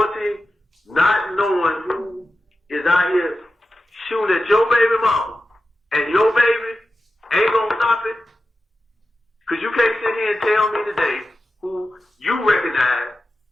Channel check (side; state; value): both; normal; correlation 0.92